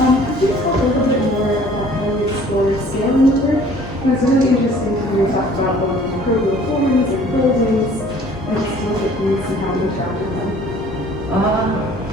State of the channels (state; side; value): normal; both; correlation 0.53